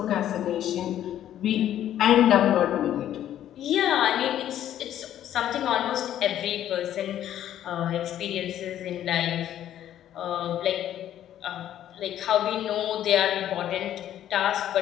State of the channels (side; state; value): right; quieter; 11.4 dB